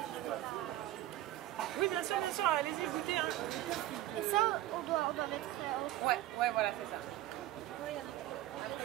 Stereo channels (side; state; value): left; quieter; 14.9 dB